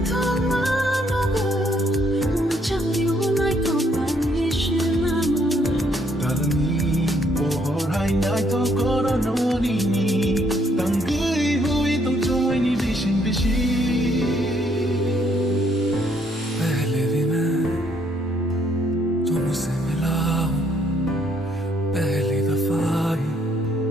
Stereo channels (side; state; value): both; normal; correlation 0.69